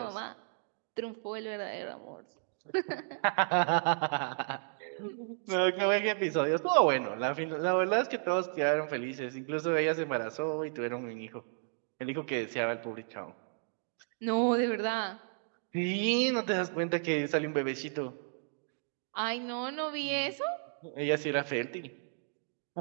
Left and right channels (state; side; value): silent; left; digital silence